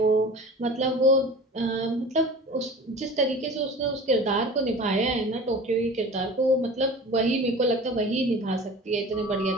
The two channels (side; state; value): both; normal; correlation 0.39